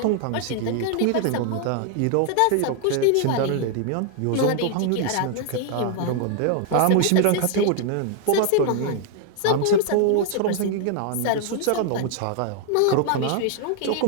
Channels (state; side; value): different; both; correlation 0.00